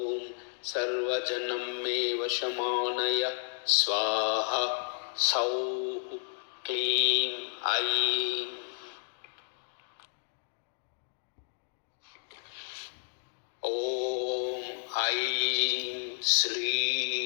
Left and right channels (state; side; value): silent; right; digital silence